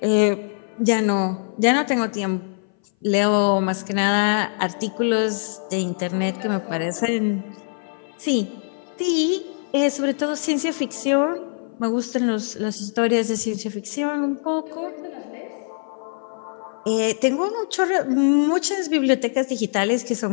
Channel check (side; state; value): right; silent; 59 dB below the other